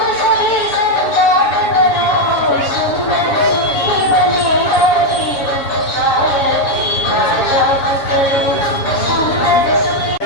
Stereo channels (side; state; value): right; late; 7.3 ms